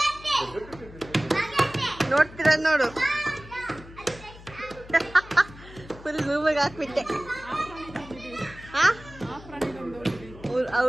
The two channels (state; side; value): noise; left; hum, 18 dB below the sound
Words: ನೋಡ್ತೀರ ನೋಡು, ಫುಲ್ ರೂಮಿಗೆ ಹಾಕ್ಬಿಟ್ಟೆ.